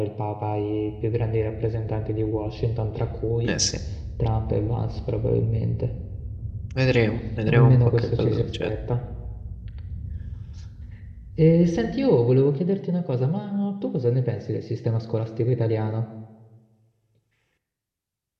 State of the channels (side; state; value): both; identical; correlation 1.00